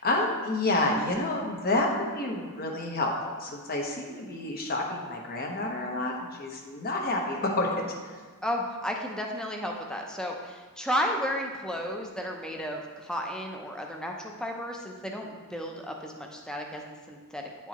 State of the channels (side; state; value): both; normal; correlation 0.15